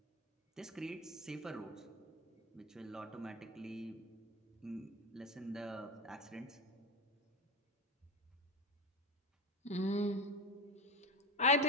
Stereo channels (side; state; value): both; normal; correlation 0.21